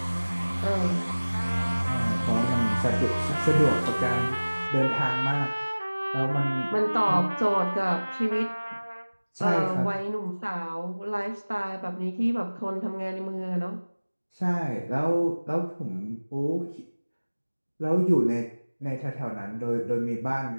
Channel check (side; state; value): both; inverted; correlation -1.00